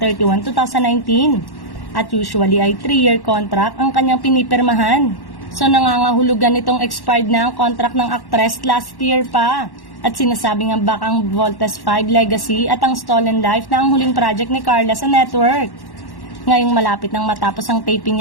2019. At usually ay 3-year contract ang kanyang pinipirmahan. So nangangahulugan itong expired na ang contract ng actress last year pa. At sinasabi nga baka ang Voltes 5 Legacy at ang Stolen Life na ang huling project ni Carla sa network. Ngayong malapit nang matapos ang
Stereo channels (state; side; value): late; right; 1.1 ms